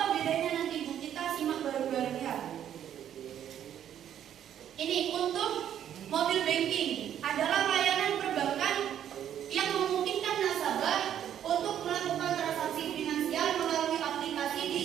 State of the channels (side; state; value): left; quieter; 10.1 dB